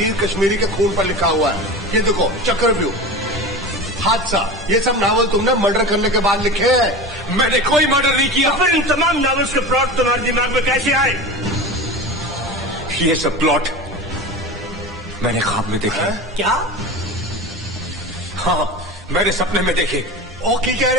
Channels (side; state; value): both; normal; correlation 0.30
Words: कश्मीरी के खून पर लिखा हुआ है। ये देखो चक्रव्यूह, हादसा, ये सब नावल तुमने मर्डर करने के बाद लिखे हैं। मैंने कोई मर्डर नहीं किया। फिर इन तमाम नावल्स के प्लॉट तुम्हारे दिमाग में कैसे आए? ये सब प्लॉट मैंने ख्वाब में देखे। क्या? हाँ मैंने सपने में देखे। ओ की कह